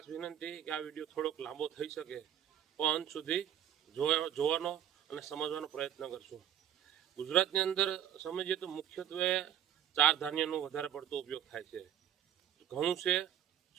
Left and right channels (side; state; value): left; quieter; 9.9 dB